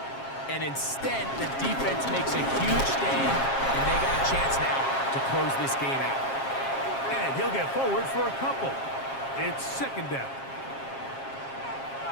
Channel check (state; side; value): late; right; 7.4 ms